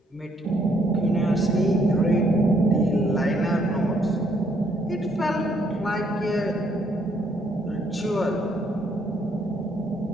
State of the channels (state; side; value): normal; both; correlation 0.70